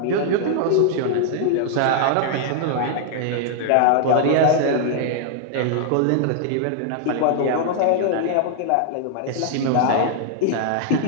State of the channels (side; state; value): both; different; correlation -0.01